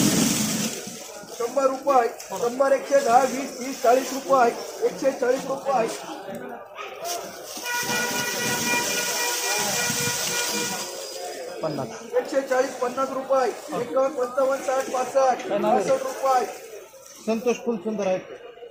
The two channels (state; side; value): identical; both; correlation 1.00